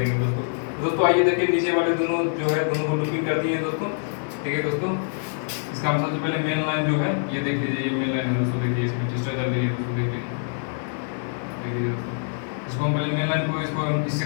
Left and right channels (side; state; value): right; silent; digital silence